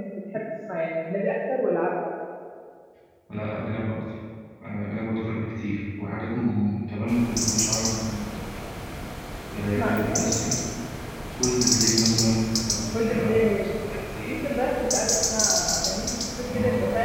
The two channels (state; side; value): identical; both; correlation 1.00